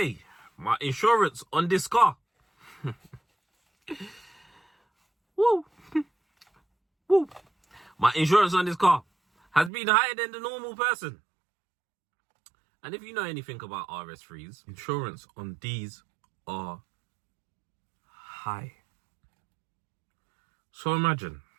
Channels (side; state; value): left; drops out; at 9.7 s